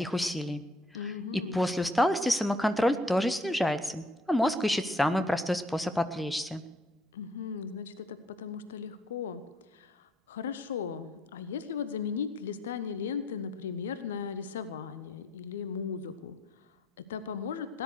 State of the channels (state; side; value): normal; both; correlation 0.65